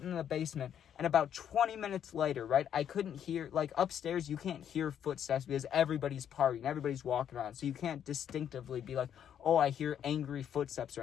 in the basement, and about 20 minutes later, right, I couldn't hear, like, upstairs, you can't hear footsteps because everybody's partying, everybody's walking around, so you can't distinctively be like, oh, I hear angry footsteps or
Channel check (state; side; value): quieter; right; 9.3 dB